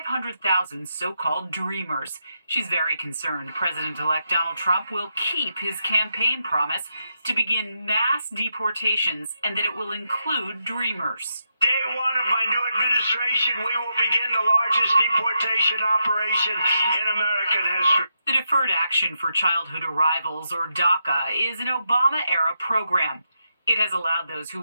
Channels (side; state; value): both; inverted; correlation -0.83